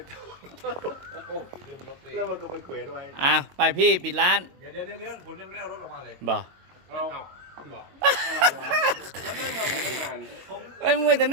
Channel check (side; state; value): left; late; 22 ms